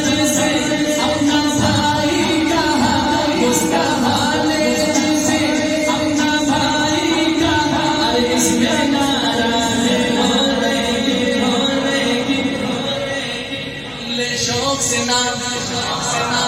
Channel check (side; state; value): left; noise; hum, 24 dB below the sound